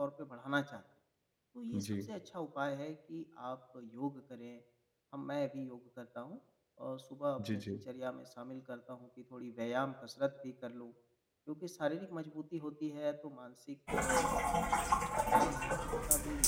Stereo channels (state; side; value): identical; both; correlation 1.00